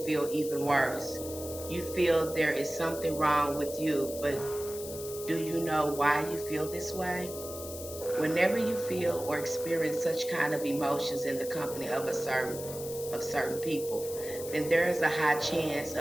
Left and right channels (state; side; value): noise; left; hiss, 11 dB below the sound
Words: feel even worse. You feel there is something wrong with you, but do you know why you feel this way? Whenever you feel or experience such kind of emotions in the company of certain people, then there is a high chance